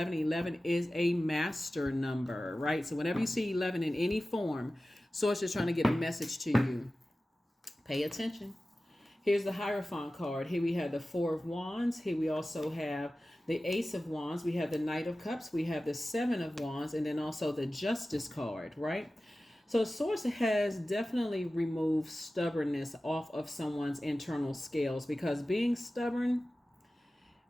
11 is a master number, right? So whenever you see 11 in any form, Source is trying to get a message to you. Pay attention. Here's the Hierophant card. Here we have the 4 of Wands. Here we also have the Ace of Wands. We have the Knight of Cups. We have the 7 of Wands. And then also the Justice card, right? So Source has definitely removed stubbornness off of someone's internal scales, because being stubborn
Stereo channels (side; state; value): both; normal; correlation 0.96